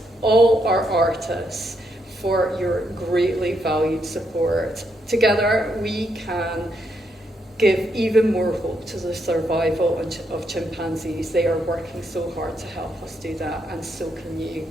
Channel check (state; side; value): normal; both; correlation 0.78